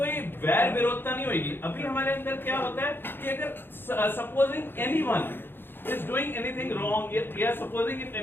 वैर विरोधता नहीं होगी। अभी हमारे अंदर क्या होता है कि अगर supposing anyone is doing anything wrong, yeah, supposing if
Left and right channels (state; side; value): late; right; 0.10 ms